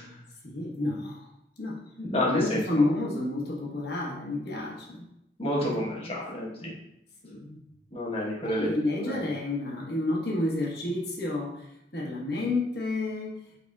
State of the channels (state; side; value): normal; both; correlation 0.66